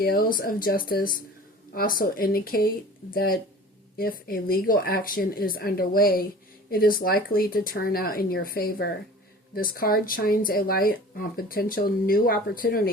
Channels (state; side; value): normal; both; correlation 0.42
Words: of justice also indicate that if a legal action is underway, it is likely to turn out in your favor. This card shines a light on potential new